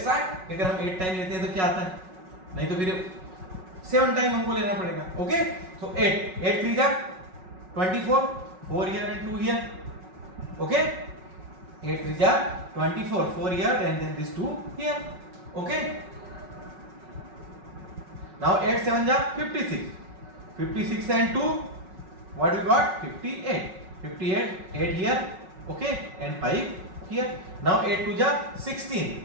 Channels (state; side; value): late; left; 5.4 ms